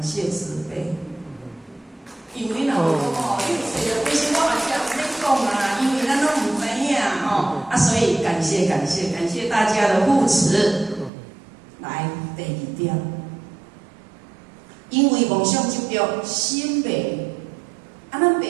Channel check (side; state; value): left; drops out; at 11.1 s